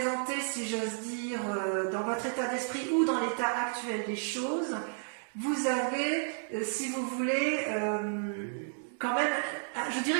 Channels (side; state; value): left; silent; digital silence